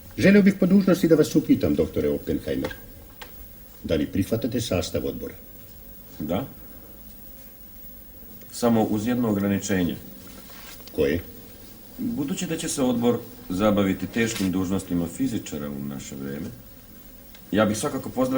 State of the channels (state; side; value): identical; both; correlation 1.00